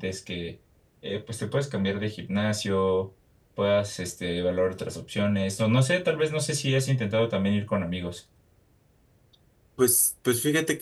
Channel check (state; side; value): identical; both; correlation 1.00